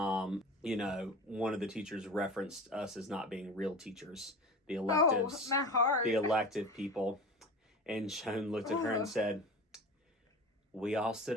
know, one of the teachers referenced us as not being real teachers, the electives, my heart. the elective people. And Joan looked at her and said, we all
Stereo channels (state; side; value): normal; both; correlation 0.33